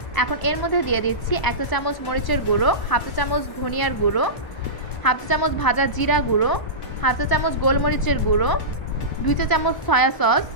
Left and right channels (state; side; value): late; right; 1.0 ms